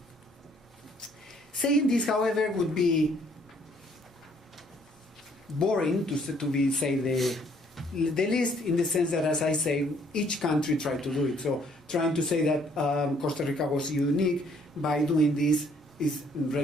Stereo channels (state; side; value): normal; both; correlation 0.64